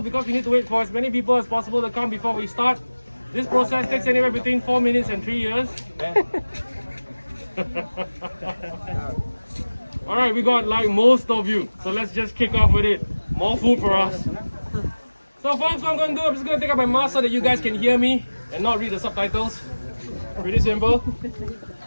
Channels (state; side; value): inverted; both; correlation -1.00